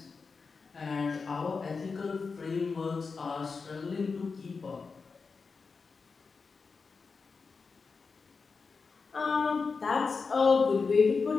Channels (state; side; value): quieter; right; 4.8 dB